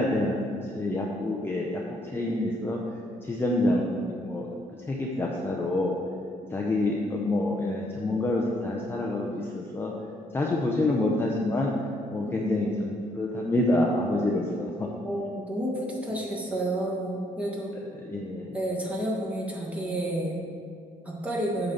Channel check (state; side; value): normal; both; correlation 0.70